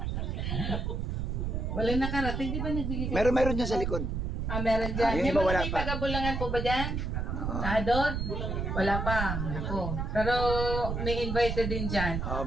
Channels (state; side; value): noise; right; rumble, 2 dB below the sound